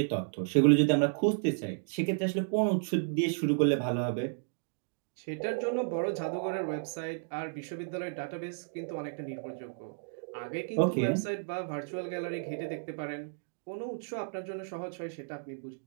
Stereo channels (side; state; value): left; silent; digital silence